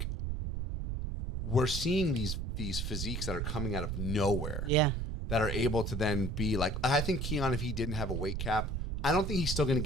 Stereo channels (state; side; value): noise; right; rumble, 2 dB below the sound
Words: we're seeing these physiques that are coming out of nowhere. Yeah. That are able to then be I think Keon, if he didn't have a weight cap, I don't think he's still going to